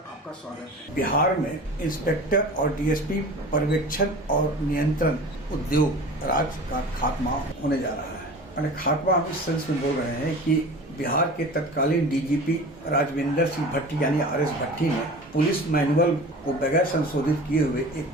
स्वागत है। बिहार में इंस्पेक्टर और डीएसपी पर्यवेक्षण और नियंत्रण उद्योग राज्य का खात्मा होने जा रहा है। यानी खात्मा हम इस सेंस में बोल रहे हैं कि बिहार के तत्कालीन डीजीपी राजविंदर सिंह भट्टी यानी आरएस भट्टी ने पुलिस मैनुअल को बगैर संशोधित किए हुए एक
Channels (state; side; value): normal; both; correlation 0.38